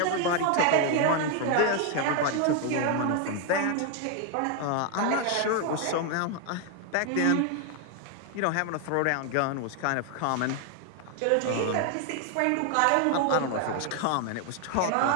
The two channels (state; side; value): different; both; correlation 0.01